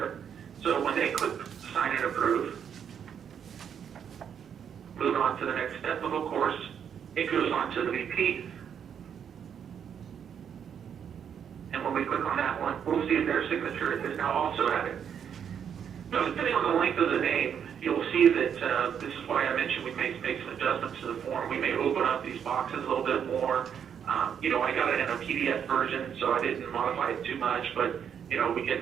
So when they click sign and approve, move on to the next step of course, it goes on to the VP. And when we click on that one, we'll see their signature is now also added. Now, depending on the length of the name, you'll see that this is why I mentioned we may make some adjustments to the form. We may open up these boxes a little bit more. You know, I got it in a PDF version, so I didn't modify it too much, but, you know, we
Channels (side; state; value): left; quieter; 8.1 dB